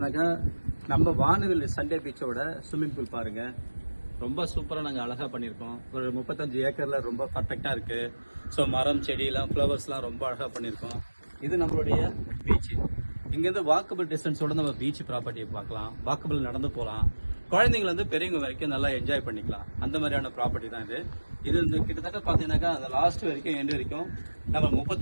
நம்ம வானவில் சண்டே பீச்சோட ஸ்விம்மிங் பூல் பாருங்க. ரொம்ப சூப்பராக நாங்கள் அழகாக பண்ணியிருக்கோம். ஒரு 35 ஏக்கர்ல ரொம்ப பர்ஃபெக்டாக இருக்கு. ஸோ மரம் செடியெல்லாம் ஃப்ளவர்ஸ்லாம் ரொம்ப அழகாக பண்ணியிருக்கோம். இது நம்மளுடைய பீச். இங்கேருந்து வாக்கபிள் டிஸ்டன்ஸோட நம்ம பீச் ப்ராப்பர்ட்டியை பார்க்கலாம். வாக்கபிள் நடந்து போகலாம். குழந்தைங்க வந்து பெரியவங்க வரைக்கும் நல்லா என்ஜாய் பண்ணிக்கலாம். அந்த மாதிரியான ப்ராப்பர்ட்டி தான் இது. இது வந்து கிட்டத்தட்ட பார்த்தீங்கன்னாக்கா அந்த லாஸ்ட் வரைக்கும் எண்டு வரைக்கும் நம்ம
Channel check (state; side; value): inverted; both; correlation -1.00